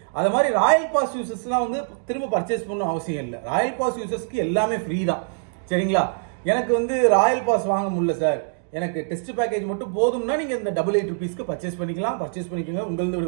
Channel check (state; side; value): silent; left; digital silence